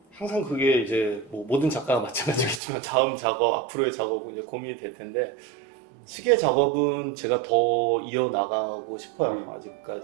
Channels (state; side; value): drops out; left; at 2.6 s